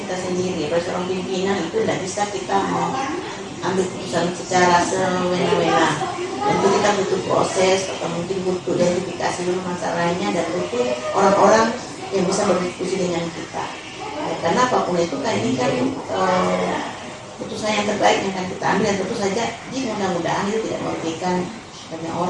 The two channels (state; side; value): identical; both; correlation 1.00